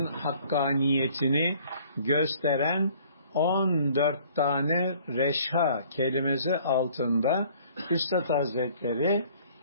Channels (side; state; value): both; inverted; correlation -0.56